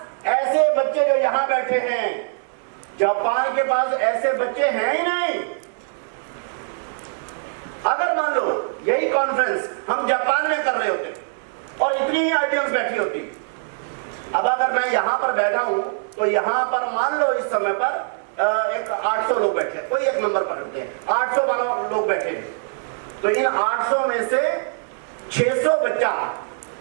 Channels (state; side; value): silent; left; digital silence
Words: ऐसे बच्चे जो यहां बैठे हैं, जापान के पास ऐसे बच्चे हैं ही नहीं। अगर मान लो यही कॉन्फ्रेंस हम जापान में कर रहे होते और इतनी ही ऑडियंस बैठी होती, अब अगर मैं यहां पर बैठा हूं तो यहां पर मान लो इस समय पर एक 800 लोग बैठे, कोई एक नंबर पकड़ते हैं, 800 लोग बैठे हैं, तो इन 800 में से 600 बच्चा